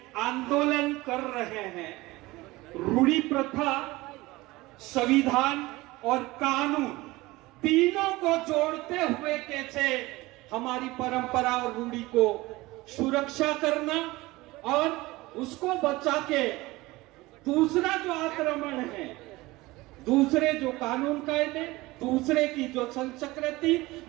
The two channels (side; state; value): left; quieter; 20.2 dB